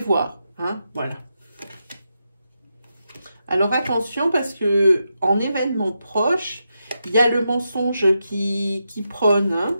Hein, voilà. Alors, attention, parce que en événement proche, il y a le mensonge qui prône. Hein.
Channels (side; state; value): both; inverted; correlation -0.86